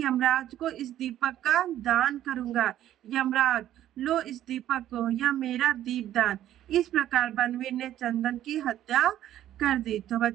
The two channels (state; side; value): quieter; left; 12.3 dB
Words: को इस दीपक का दान करूंगा। यमराज लो इस दीपक को, यह मेरा दीपदान। इस प्रकार बनवीर ने चंदन की हत्या कर दी। तो